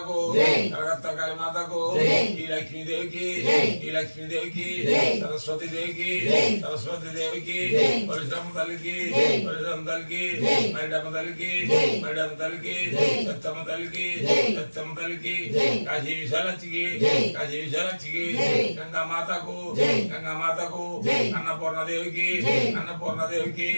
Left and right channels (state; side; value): inverted; both; correlation -1.00